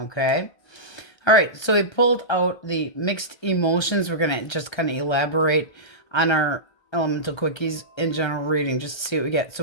All right, so we pulled out the mixed emotions. We're going to just kind of elaborate on our elemental quickies in general reading just to see what we get.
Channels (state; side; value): late; right; 1.3 ms